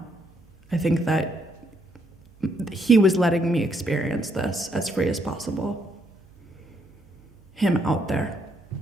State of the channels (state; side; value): noise; right; hum, 28 dB below the sound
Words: think that he was letting me experience this as free as possible. Him out there.